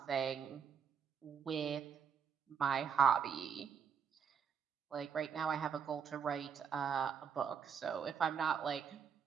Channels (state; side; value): quieter; left; 6.9 dB